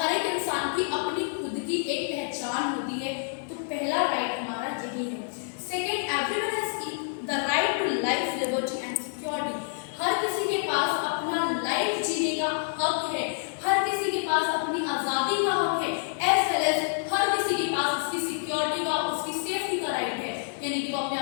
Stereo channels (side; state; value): right; silent; 59 dB below the other